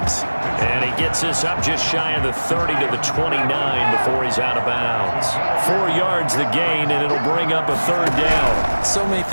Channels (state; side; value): inverted; both; correlation -1.00